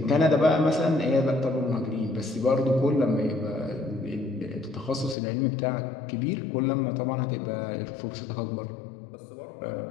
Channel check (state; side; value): drops out; right; at 5.2 s